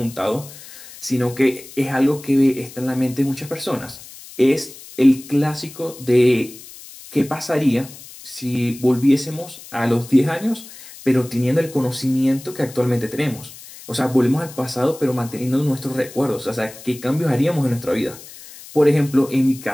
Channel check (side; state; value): left; noise; hiss, 17 dB below the sound